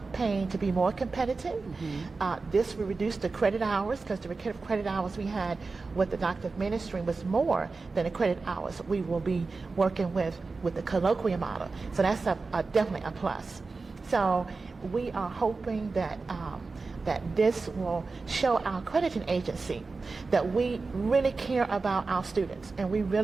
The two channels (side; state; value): left; quieter; 4.0 dB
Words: Payne to be more competitive. This will reduce the credit hours because the credit hours we had with the doctor of ministry was more than the credit hours we will be working with the colloquial model. So that's definitely a plus. So we are hoping that that this will show our accrediting agency that we really care about our students and we